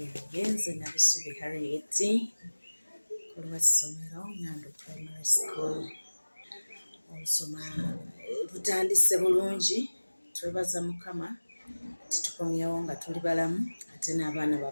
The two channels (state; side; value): inverted; both; correlation -1.00